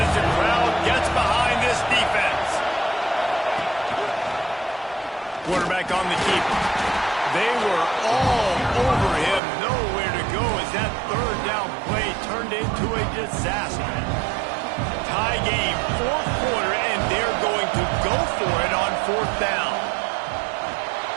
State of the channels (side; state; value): left; drops out; at 9.4 s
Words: the crowd gets behind this defense. Quarterback on the keeper. They were all over him. Nowhere to go as that third down play turned into a disaster. Tie game, fourth quarter, and they're going to go for it on fourth down.